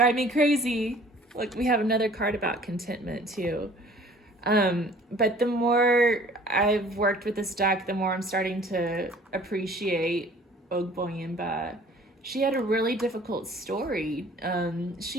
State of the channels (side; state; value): both; normal; correlation 0.51